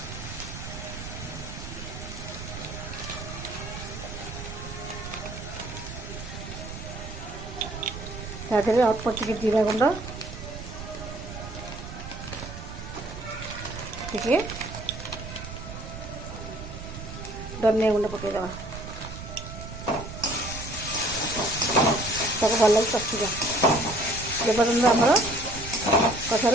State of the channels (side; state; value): right; noise; rumble, 10 dB below the sound